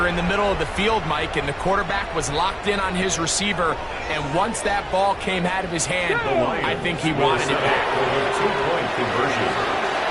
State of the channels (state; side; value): identical; both; correlation 1.00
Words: in the middle of the field, Mike, and the quarterback was locked in on his receiver, and once that ball came out of his hand, I think he wanted it back. 2-point conversion.